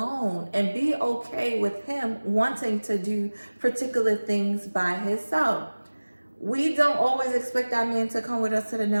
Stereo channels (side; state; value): both; inverted; correlation -1.00